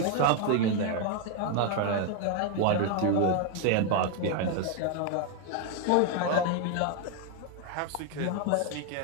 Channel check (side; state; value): both; different; correlation 0.01